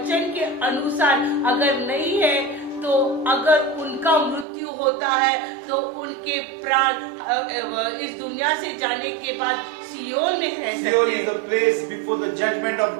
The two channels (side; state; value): left; drops out; at 4.5 s